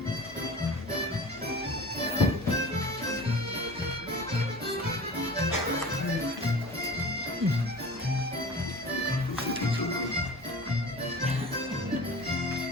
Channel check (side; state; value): both; normal; correlation 0.38